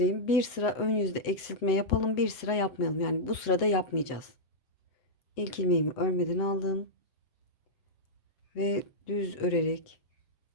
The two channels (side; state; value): right; late; 7.9 ms